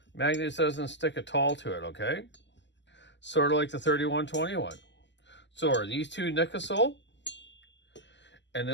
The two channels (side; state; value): right; late; 0.52 ms